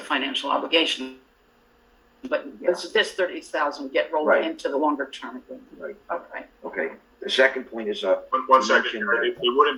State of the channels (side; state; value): both; identical; correlation 1.00